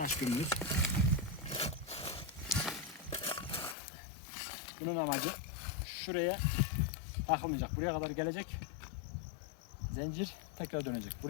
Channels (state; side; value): drops out; right; at 3.8 s